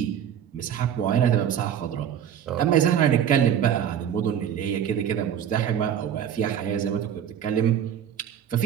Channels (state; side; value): quieter; left; 9.2 dB